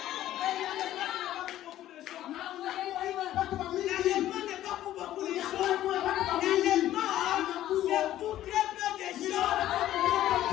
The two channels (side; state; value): right; quieter; 13.3 dB